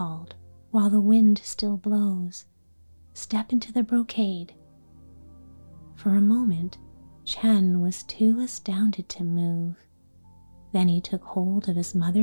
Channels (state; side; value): inverted; both; correlation -1.00